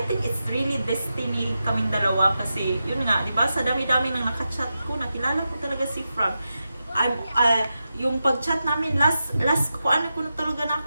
think it's really destiny kaming dalawa, kasi yun nga, di ba, sa dami-dami ng nakachat ko, nakilala ko talaga si Frank. Yung pag-chat namin, last ko na talaga na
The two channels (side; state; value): both; inverted; correlation -0.90